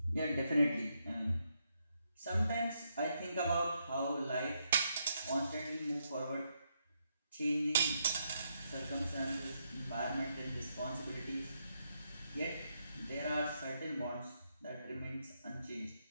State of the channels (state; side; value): inverted; both; correlation -0.79